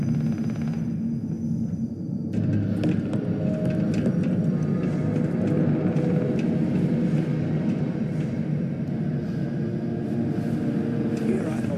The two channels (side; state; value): both; identical; correlation 1.00